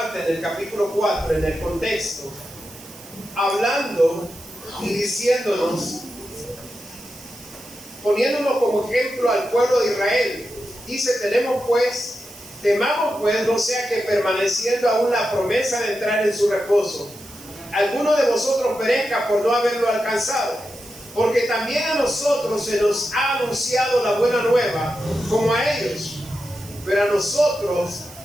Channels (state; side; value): noise; right; hiss, 19 dB below the sound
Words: del capítulo 4 en el contexto, hablando y diciéndonos, poniéndonos como ejemplo al pueblo de Israel. Dice, temamos pues, no sea que permaneciendo aún la promesa de entrar en su reposo, alguno de vosotros perezca por no haberlo alcanzado. Porque también a nosotros se nos ha anunciado la buena nueva, como a ellos.